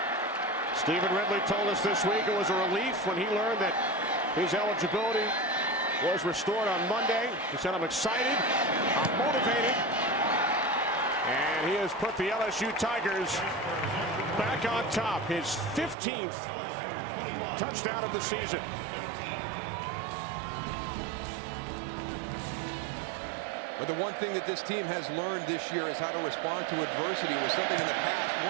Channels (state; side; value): drops out; left; at 16.0 s